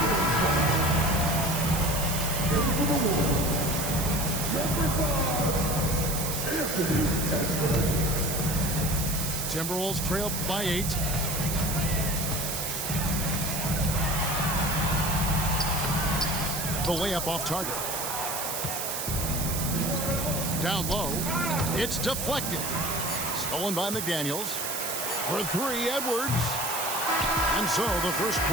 Timberwolves trail by 8. The layup off target. Down low. It's deflected. Stolen by McDaniels. For 3, Edwards. And so the first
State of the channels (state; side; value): noise; right; hiss, 3 dB below the sound